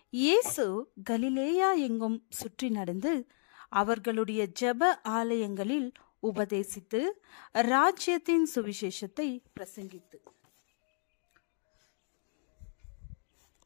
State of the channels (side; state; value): right; silent; digital silence